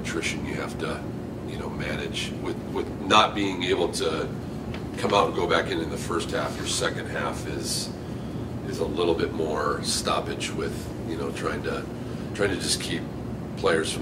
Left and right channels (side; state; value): both; identical; correlation 1.00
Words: you have to manage with not being able to come out and go back in the first half. Your second half is a little bit more stoppage with trying to just keep players